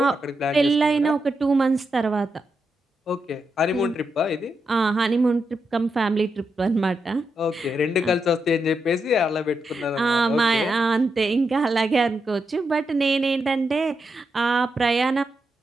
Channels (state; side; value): normal; both; correlation 0.84